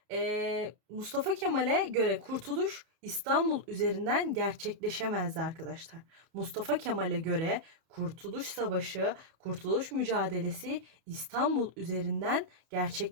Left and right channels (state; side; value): late; left; 31 ms